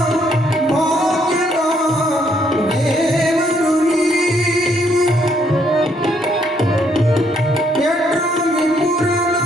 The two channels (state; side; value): normal; both; correlation 0.70